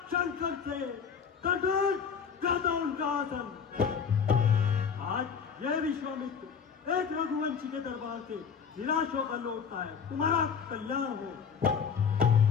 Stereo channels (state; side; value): quieter; right; 6.5 dB